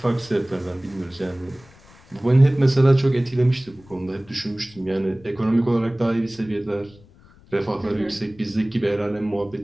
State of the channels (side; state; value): left; noise; rumble, 26 dB below the sound